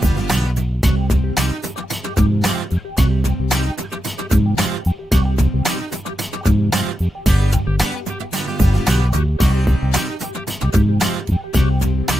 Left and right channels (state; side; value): normal; both; correlation 0.89